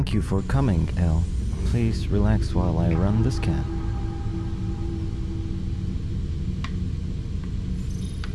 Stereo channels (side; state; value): both; identical; correlation 1.00